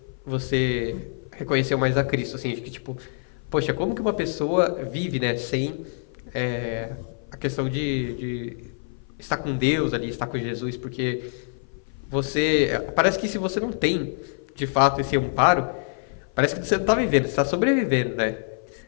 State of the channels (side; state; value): right; silent; 56 dB below the other